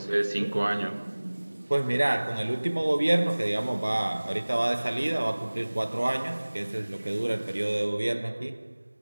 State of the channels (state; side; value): inverted; both; correlation -1.00